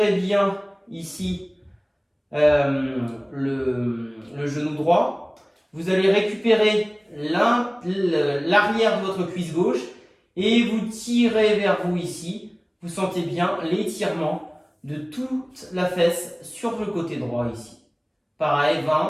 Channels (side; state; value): both; identical; correlation 1.00